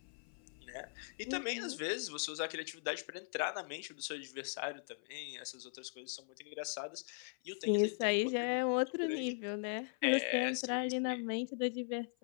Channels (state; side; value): silent; right; 51 dB below the other